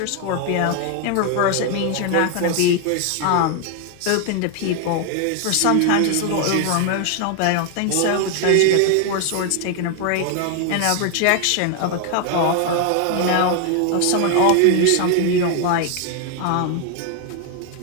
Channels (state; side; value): different; both; correlation 0.00